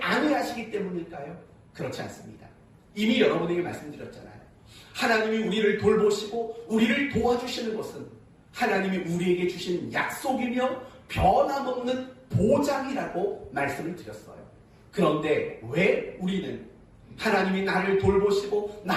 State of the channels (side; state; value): both; identical; correlation 1.00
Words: 아니하시기 때문일까요? 그렇지 않습니다. 이미 여러분에게 말씀드렸잖아요. 하나님이 우리를 돌보시고 우리를 도와주시는 것은 하나님이 우리에게 주신 약속이며 변함없는 보장이라고 말씀을 드렸어요. 그런데 왜 우리는 하나님이 나를 돌보시고